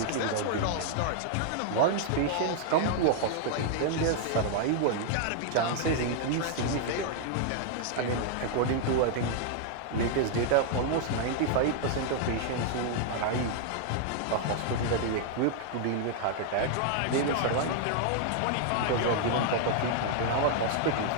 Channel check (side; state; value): both; different; correlation 0.00